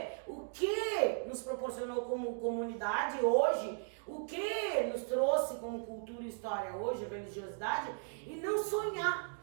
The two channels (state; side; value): silent; left; 53 dB below the other